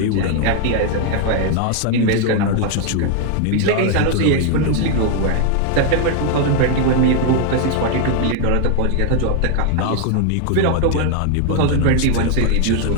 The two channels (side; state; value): both; different; correlation 0.00